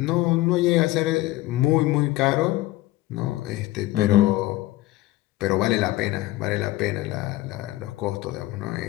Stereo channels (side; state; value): right; quieter; 17.3 dB